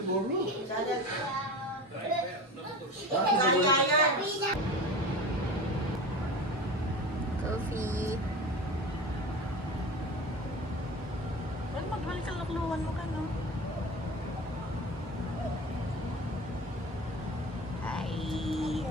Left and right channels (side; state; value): both; normal; correlation 0.32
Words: borrow? Coffee. Well, magbalik ka lakluhan mo ka, no? Hi.